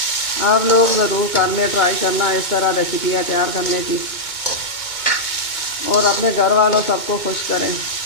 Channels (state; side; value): late; right; 2.2 ms